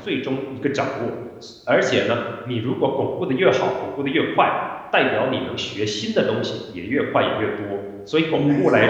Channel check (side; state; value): both; identical; correlation 1.00